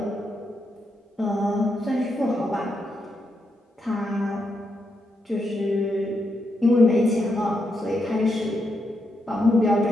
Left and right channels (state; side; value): normal; both; correlation 0.82